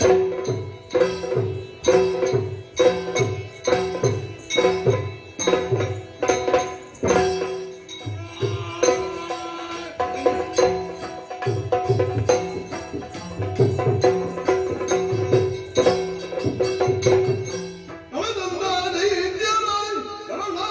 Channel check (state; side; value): identical; both; correlation 1.00